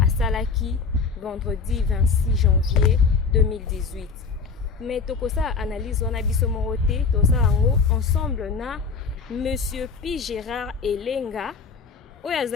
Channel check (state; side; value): quieter; right; 5.2 dB